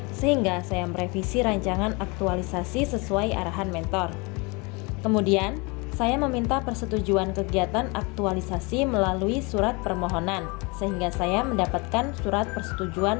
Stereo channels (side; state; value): right; quieter; 28.3 dB